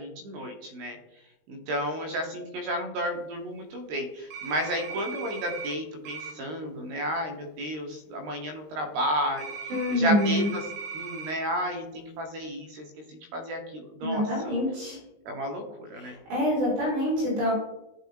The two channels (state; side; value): late; left; 19 ms